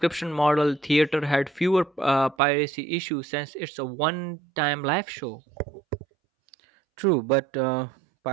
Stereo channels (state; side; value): drops out; left; at 2.4 s